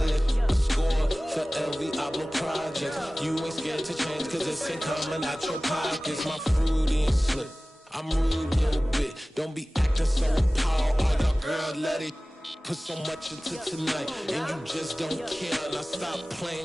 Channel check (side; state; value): both; normal; correlation 0.97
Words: a score for every Ablo project. You ain't scared to change cause this ain't coming out your pockets. My fruity and slip, I'm rude a little bit. Don't be acting so appalled. All y'all girl, let it put so much into tonight. And you just don't care. Now stop